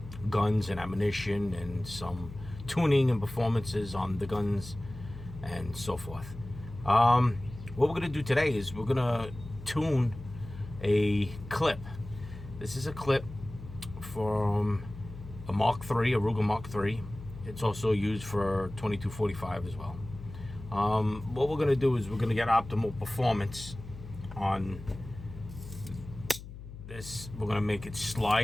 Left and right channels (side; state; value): left; noise; hum, 13 dB below the sound